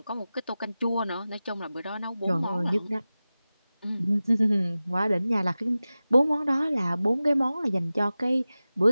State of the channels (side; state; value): both; inverted; correlation -0.96